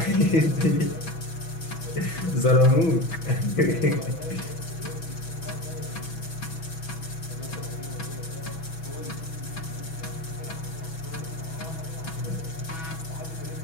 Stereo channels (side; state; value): right; late; 6.1 ms